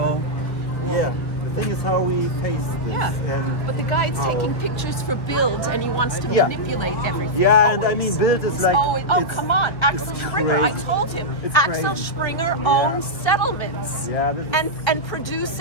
Yeah. The thing is how we face this. And but the guy's taking pictures for Bild and he wants to manipulate everything. And I mean, Bild is like... come on, Axel Springer, I told him. Axel Springer owns settlements and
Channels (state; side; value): late; right; 1.8 ms